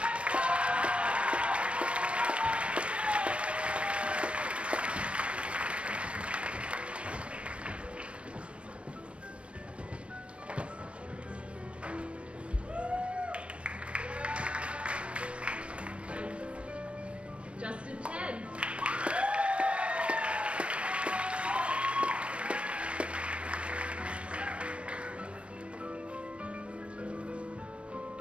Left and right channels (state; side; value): late; left; 0.060 ms